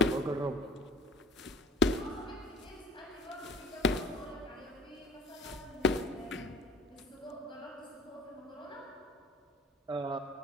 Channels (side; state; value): both; normal; correlation 0.51